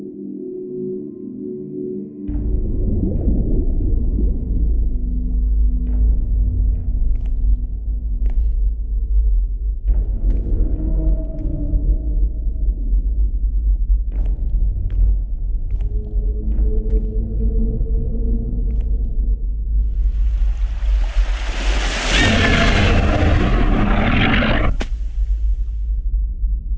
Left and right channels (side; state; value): both; identical; correlation 1.00